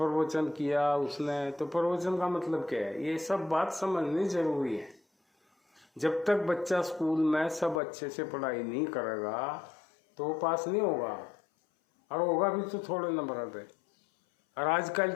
किया उसने, तो प्रवचन का मतलब क्या है, ये सब बात समझनी जरूरी है। जब तक बच्चा स्कूल में सब अच्छे से पढ़ाई नहीं करेगा तो वो पास नहीं होगा, और होगा भी तो थोड़े नंबर पे। और आजकल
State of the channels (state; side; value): drops out; right; at 7.8 s